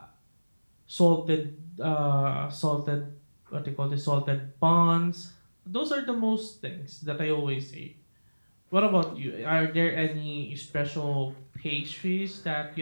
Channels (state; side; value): inverted; both; correlation -1.00